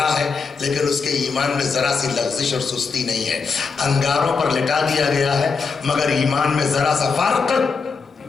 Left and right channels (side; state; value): right; quieter; 5.0 dB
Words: ہے, لیکن اس کے ایمان میں ذرا سی لغزش اور سستی نہیں ہے. انگاروں پر لٹا دیا گیا ہے مگر ایمان میں ذرا سا فرق